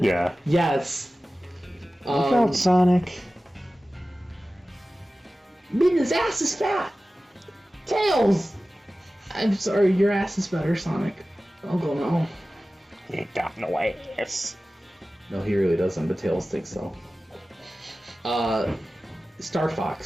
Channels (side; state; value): both; normal; correlation 0.96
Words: Yeah. Yes. Look out, Sonic. Midna's ass is fat. Tails. I'm sorry, your ass is better, Sonic. I'll go now. He ain't got no ass. No, he really doesn't, but Tails thinks so. Star